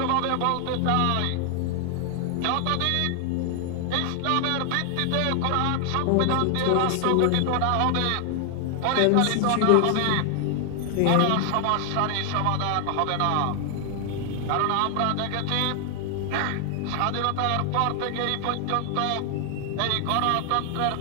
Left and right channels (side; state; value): both; different; correlation 0.00